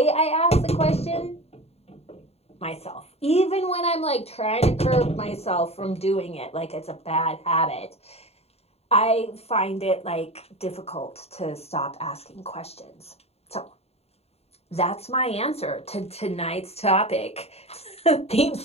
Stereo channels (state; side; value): late; right; 0.30 ms